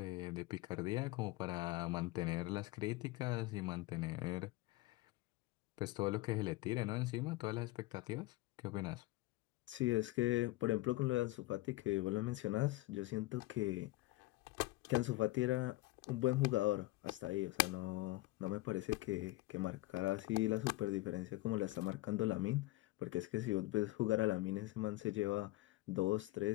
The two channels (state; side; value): quieter; right; 19.2 dB